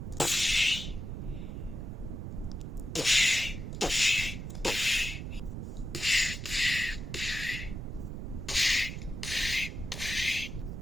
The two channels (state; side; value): noise; right; rumble, 6 dB below the sound